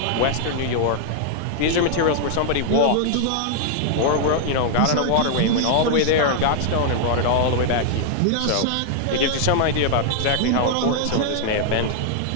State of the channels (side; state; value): both; different; correlation 0.00